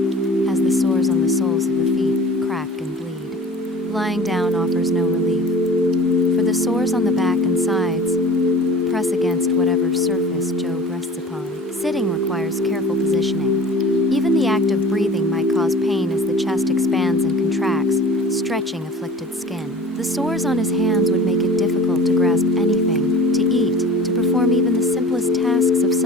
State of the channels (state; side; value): normal; both; correlation 0.41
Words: as the sores on the soles of the feet crack and bleed. Lying down offers no relief, for the sores on the back and sides press against whatever surface Job rests upon. Sitting requires careful positioning. Even the act of breathing might cause pain as the chest expands and contracts, stretching afflicted skin. The sores on his hands would make it difficult to grasp anything, to eat, to perform even the simplest tasks of